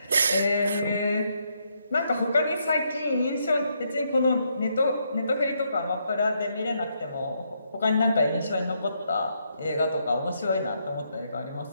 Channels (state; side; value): inverted; both; correlation -0.76